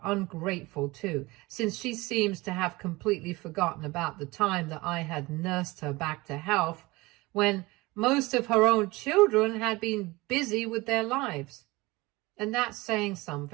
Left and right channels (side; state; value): left; quieter; 21.9 dB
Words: ungrateful too, since she seems to have completely forgotten about the time that I had nursed her back to health when most of her own children had been busy with their lives. And that's saying